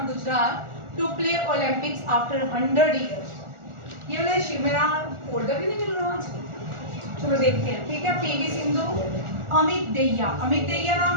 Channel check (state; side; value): late; left; 1.4 ms